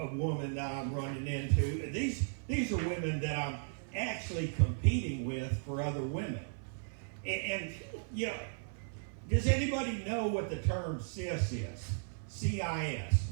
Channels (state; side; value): silent; left; 54 dB below the other